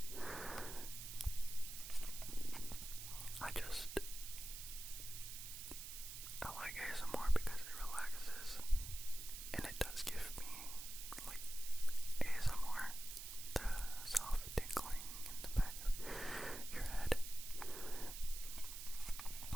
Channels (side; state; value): right; noise; hiss, 8 dB below the sound